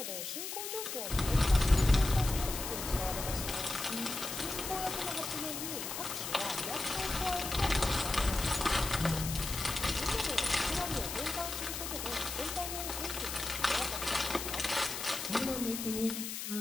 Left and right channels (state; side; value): noise; left; hiss, 5 dB below the sound